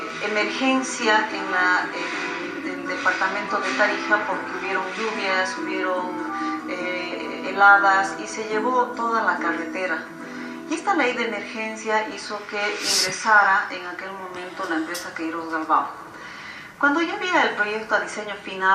emergencia en el departamento de Tarija, porque hubieron lluvias, hubieron heladas y se llevó toda la carretera. Y esta ley de emergencia hizo que ingresara en aquel momento la empresa Queiroz Galbao. Cuando yo vi el proyecto a diseño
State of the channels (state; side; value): identical; both; correlation 1.00